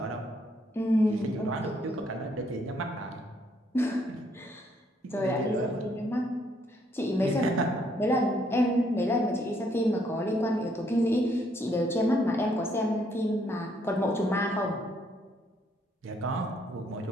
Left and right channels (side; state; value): both; normal; correlation 0.70